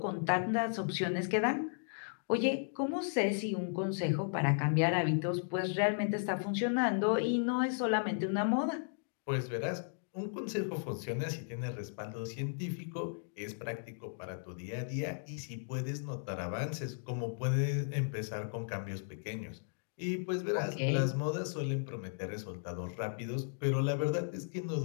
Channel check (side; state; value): right; silent; digital silence